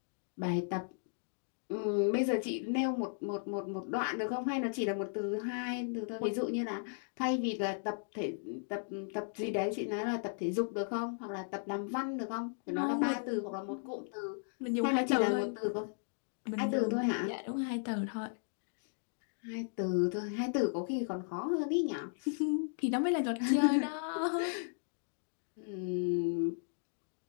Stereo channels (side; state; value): right; silent; digital silence